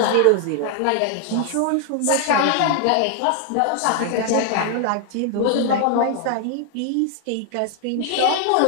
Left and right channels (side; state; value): both; different; correlation 0.00